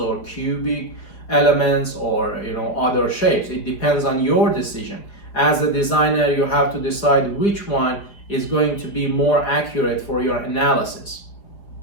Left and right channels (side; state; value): right; late; 4.9 ms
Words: cubic elements or other shapes. It depends on your decision. As a designer, you have to decide which one is going to be more accurate for your analysis.